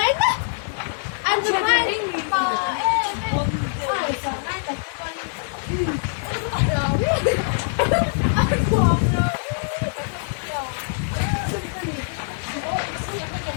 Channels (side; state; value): right; silent; digital silence